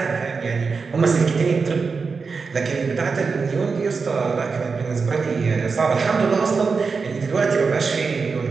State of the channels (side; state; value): left; quieter; 4.9 dB